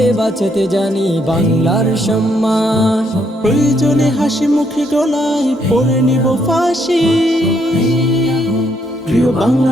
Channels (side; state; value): both; normal; correlation 0.73